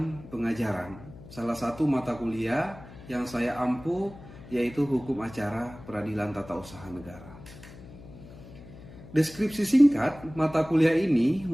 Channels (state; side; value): noise; left; hum, 17 dB below the sound